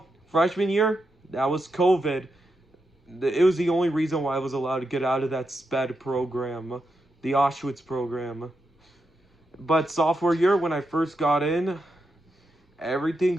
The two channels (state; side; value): normal; both; correlation 0.85